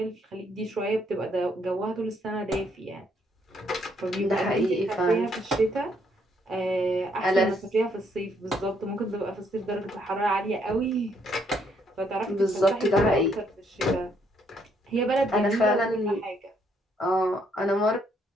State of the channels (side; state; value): both; normal; correlation 0.71